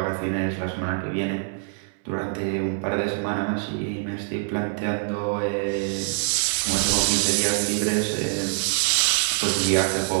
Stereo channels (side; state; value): left; silent; 62 dB below the other